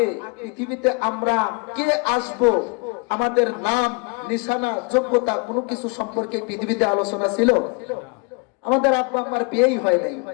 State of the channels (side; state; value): right; quieter; 32.2 dB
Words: পৃথিবীতে আমরা কে আসব, আমাদের নাম, নিশানা, যোগ্যতা কোনো কিছু সম্পর্কে পৃথিবীতে আলোচনা ছিল? আমাদের আব্বা মার বিয়েই হয় নাই,